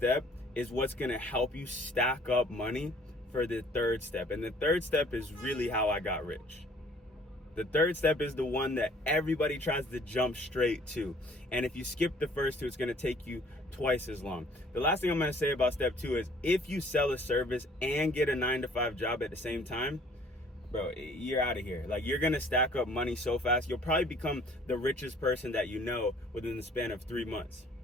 is what's gonna help you stack up money for the third step. And the third step is really how I got rich. The third step is the one that everybody tries to jump straight to. And if you skip the first two, it's gonna take you twice as long. The last thing I'm gonna say about step 2 is if you sell a service and get a 9-to-5 job at the same time, bro, you're out of here. Like, you're gonna stack up money so fast, you'll probably become the richest person that you know within the span of 3 months.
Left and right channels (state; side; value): normal; both; correlation 0.56